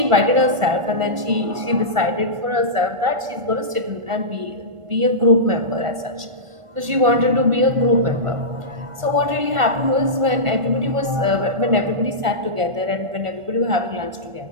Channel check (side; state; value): left; late; 1.5 ms